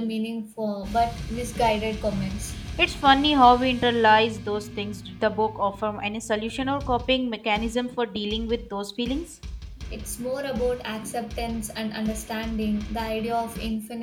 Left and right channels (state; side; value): identical; both; correlation 1.00